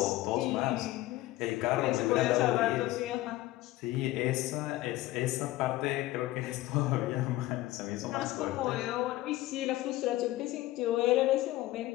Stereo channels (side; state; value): right; quieter; 17.0 dB